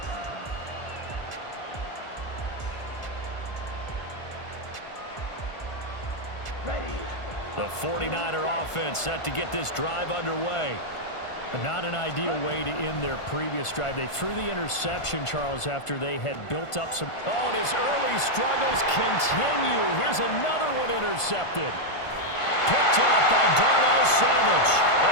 The 49er offense set to get this drive underway. Not an ideal way to end their previous drive. They threw the interception, Charles, after they had built up some... Oh, and his early struggles continue. Here's another one intercepted. Picked off by Darnell Savage.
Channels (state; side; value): late; right; 1.5 ms